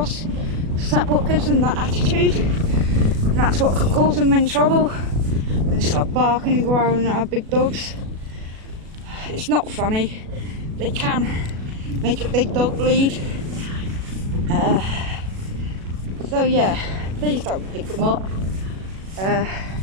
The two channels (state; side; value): late; left; 37 ms